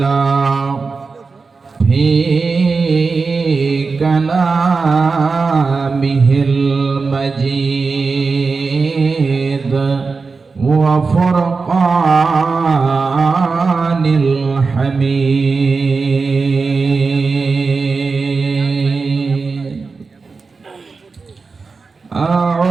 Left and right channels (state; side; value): quieter; left; 4.5 dB